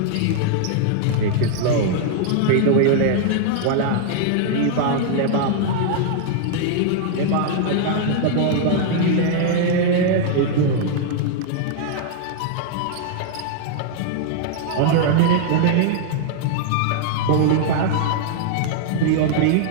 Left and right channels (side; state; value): both; different; correlation -0.01